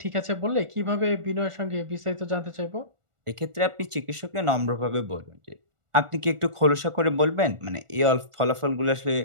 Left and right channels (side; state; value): left; late; 1.4 ms